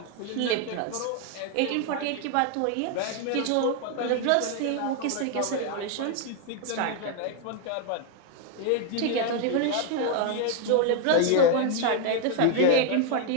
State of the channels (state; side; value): different; both; correlation 0.00